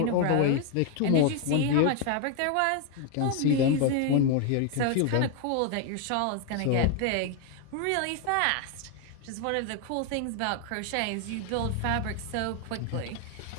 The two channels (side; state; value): both; different; correlation 0.00